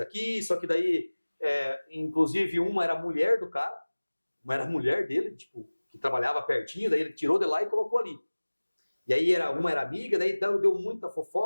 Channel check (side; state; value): both; inverted; correlation -1.00